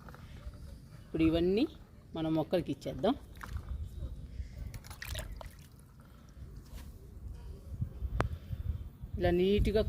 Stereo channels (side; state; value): both; identical; correlation 1.00